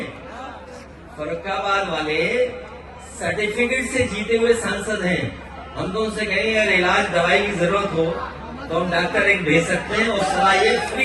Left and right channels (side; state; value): both; identical; correlation 1.00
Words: फरक्काबाद वाले सर्टिफिकेट से जीते हुए सांसद हैं। हम तो उनसे कहेंगे अगर इलाज दवाई की जरूरत हो तो हम डॉक्टर एक भेज सकते हैं और सलाह ये